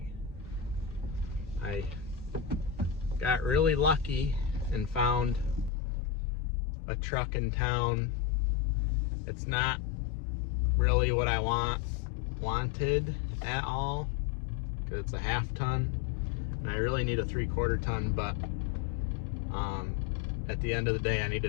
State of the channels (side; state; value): right; drops out; at 5.7 s